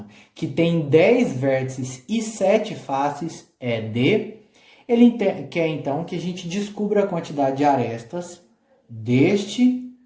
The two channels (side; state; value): both; identical; correlation 1.00